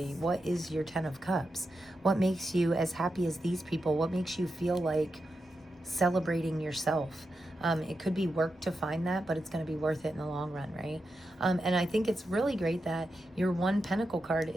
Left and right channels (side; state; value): both; normal; correlation 0.88